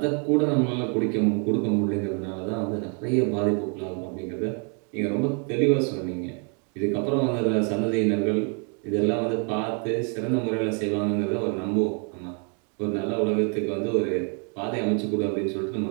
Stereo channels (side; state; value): left; quieter; 39.4 dB